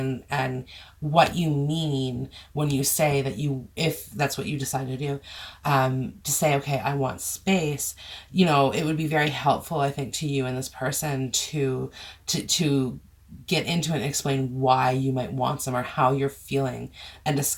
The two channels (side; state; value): both; identical; correlation 1.00